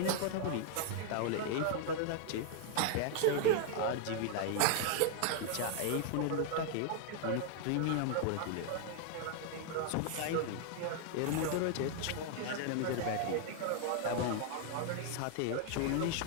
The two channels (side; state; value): both; different; correlation 0.00